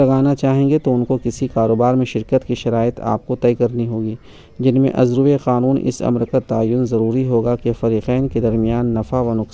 چاہیں گے تو ان کو کسی کاروبار میں شرکت کی شرائط آپ کو طے کرنی ہوگی، جن میں ازروِ قانون اس امر کا تعین ضروری ہوگا کہ فریقین کے درمیان نفع و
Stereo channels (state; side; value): identical; both; correlation 1.00